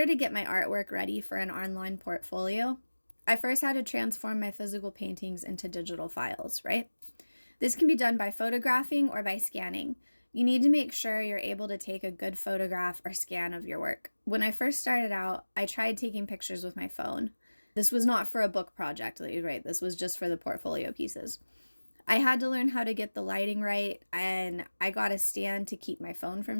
to get my artwork ready for an online portfolio, I first had to transform my physical paintings into digital files, right? This can be done by photographing or by scanning. You need to make sure you're able to take a good photograph or scan of your work. When I first started out, I tried taking pictures with my phone. This was not for a book project, right? This was just for the portfolio pieces. I had to learn how to get the lighting right, and I got a stand to keep my phone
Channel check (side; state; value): both; inverted; correlation -1.00